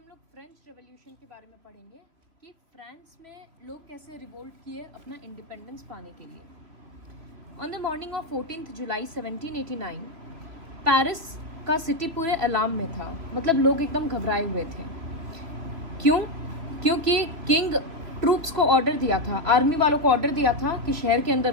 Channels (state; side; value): late; left; 2.9 ms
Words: हम लोग French revolution के बारे में पढ़ेंगे कि फ्रांस में लोग कैसे रिवोल्ट किए अपना इंडिपेंडेंस पाने के लिए। On the morning of 14 July 1789 Paris का सिटी पूरे अलार्म में था, मतलब लोग एकदम घबराए हुए थे। क्यों? क्योंकि किंग ट्रूप्स को ऑर्डर दिया था, आर्मी वालों को ऑर्डर दिया था कि शहर के